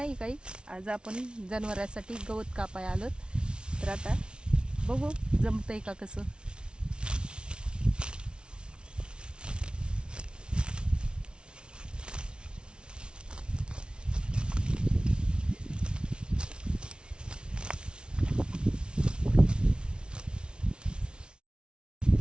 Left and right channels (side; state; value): left; late; 0.056 ms